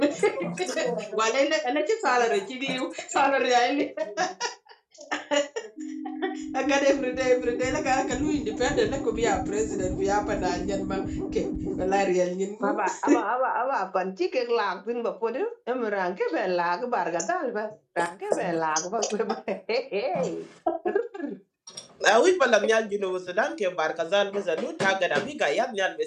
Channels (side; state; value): both; identical; correlation 1.00